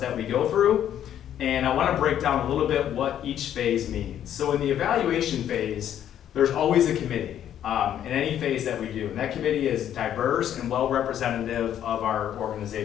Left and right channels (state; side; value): quieter; right; 10.5 dB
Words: that we go through. And I want to break down a little bit what each phase means. So in the evaluation phase, there's always a committee in any phase that we do. And that committee is diverse and well representative of our